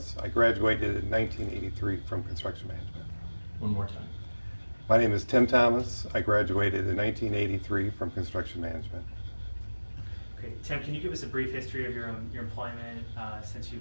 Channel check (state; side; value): inverted; both; correlation -1.00